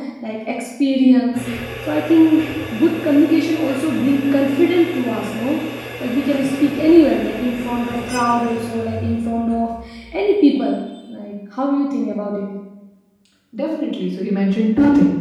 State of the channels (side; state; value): both; identical; correlation 1.00